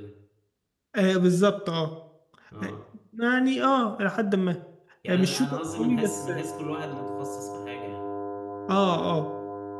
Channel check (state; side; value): identical; both; correlation 1.00